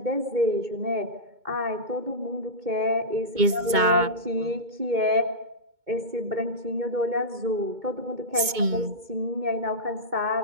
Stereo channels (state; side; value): late; left; 2.2 ms